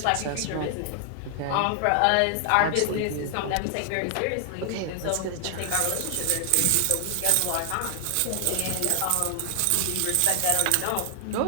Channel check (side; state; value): both; different; correlation 0.00